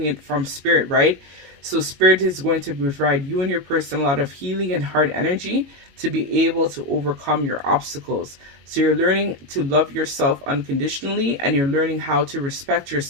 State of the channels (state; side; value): late; left; 22 ms